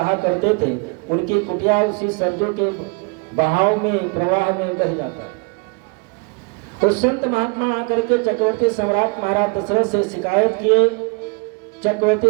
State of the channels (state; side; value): quieter; left; 32.9 dB